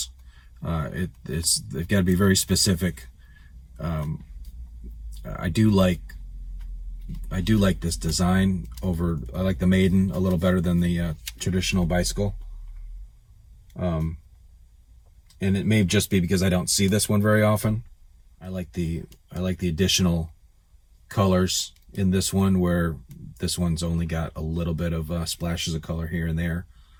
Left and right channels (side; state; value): both; identical; correlation 1.00